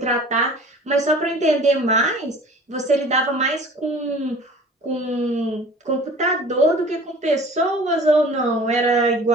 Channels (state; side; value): normal; both; correlation 0.45